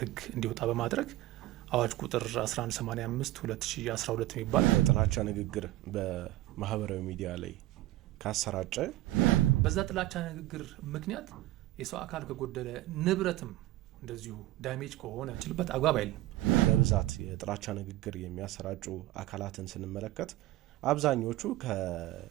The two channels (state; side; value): quieter; left; 16.2 dB